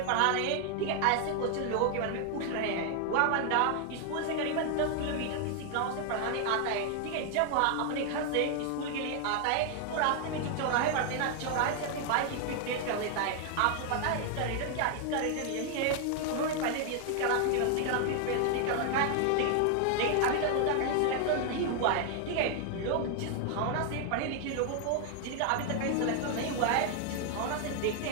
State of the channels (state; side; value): different; both; correlation 0.00